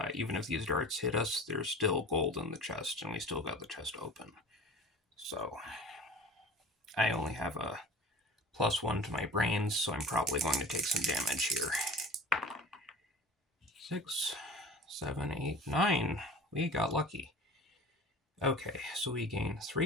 even if these darts hit us, there's still gold in the chest, and we still got the chest open. So I only have a +1 to my brains, so I'm probably going to take some damage here. 6, 7, 8, 9. We got lucky. Okay, so we gain 3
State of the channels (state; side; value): normal; both; correlation 0.39